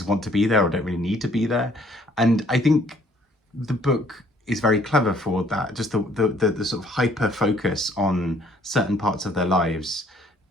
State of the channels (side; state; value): both; normal; correlation 0.61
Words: want to be there or don't really need to be there. And I think the book is very clever for that, just the sort of hyper focus on certain parts of their lives,